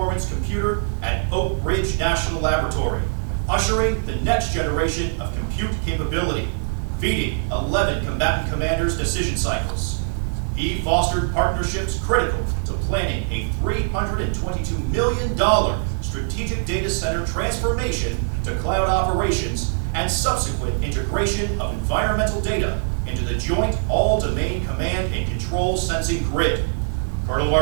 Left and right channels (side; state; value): left; silent; digital silence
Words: computer at Oak Ridge National Laboratory, ushering the next generation of compute capability, feeding 11 combatant commanders' decision cycles. He fostered partnerships critical to planning a $322 million strategic data center transformation to cloud operations and subsequent integration of environmental data into the Joint All-Domain Command and Control Sensing Grid. Colonel